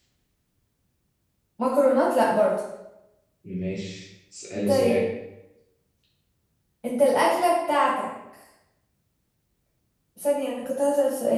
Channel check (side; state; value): both; identical; correlation 1.00